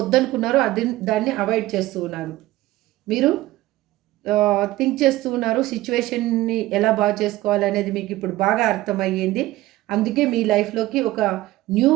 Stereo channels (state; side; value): quieter; left; 17.0 dB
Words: దాన్ని అవాయిడ్ చేస్తూ ఉన్నారు. మీరు థింక్ చేస్తూ ఉన్నారు. సిచ్యువేషన్‌ని ఎలా బాగా చేసుకోవాలనేది మీకు ఇప్పుడు బాగా అర్థమయ్యింది. అందుకే మీ లైఫ్‌లోకి ఒక న్యూ